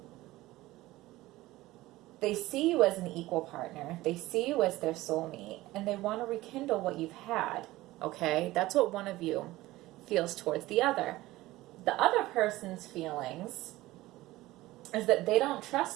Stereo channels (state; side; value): quieter; left; 17.8 dB